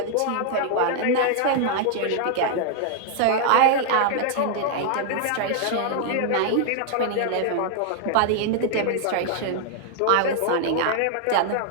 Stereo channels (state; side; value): different; both; correlation 0.00